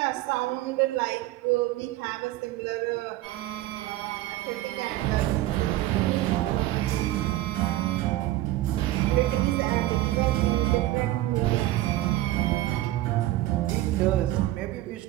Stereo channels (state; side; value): quieter; left; 15.8 dB